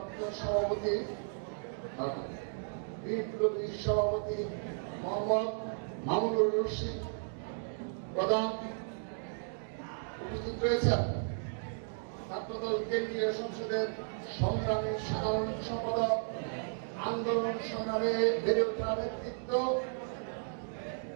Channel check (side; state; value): left; silent; digital silence